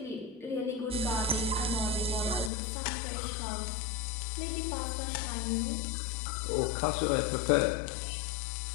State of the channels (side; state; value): right; drops out; at 2.5 s